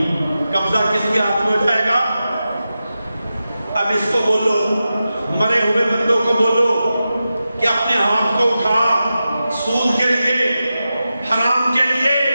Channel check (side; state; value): both; inverted; correlation -0.92